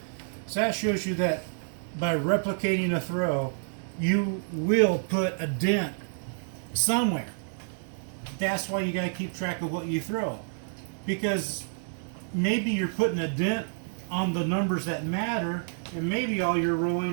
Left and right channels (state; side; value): silent; left; 56 dB below the other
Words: So that shows you that by replicating a throw, you will put a dent somewhere. That's why you got to keep track of what you throw. Because maybe you're putting a dent on the numbers that matter, and maybe all you're rolling